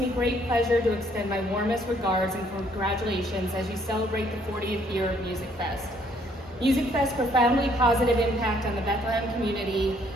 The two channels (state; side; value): normal; both; correlation 0.65